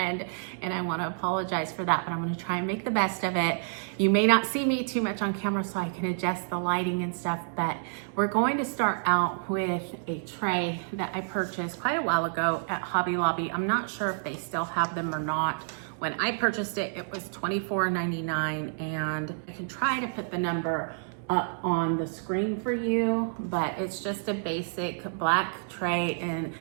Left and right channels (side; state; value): left; silent; 59 dB below the other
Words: and I want to apologize for that, but I'm going to try and make the best of it. You may not see me too much on camera, so I can adjust the lighting and stuff, but we're going to start out with a tray that I purchased quite a while ago at Hobby Lobby. I'm not sure if they still have them or not. When I purchased it, it was $24.99, and I can try to put the number up on the screen for you, but it's just a basic black tray and